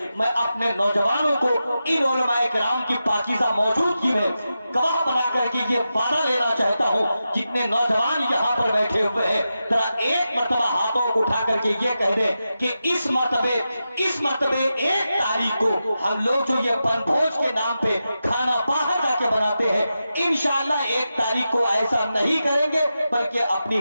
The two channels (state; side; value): inverted; both; correlation -0.90